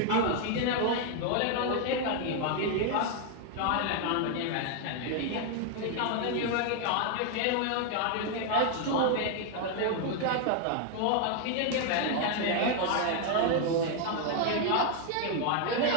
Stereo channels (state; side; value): different; both; correlation 0.00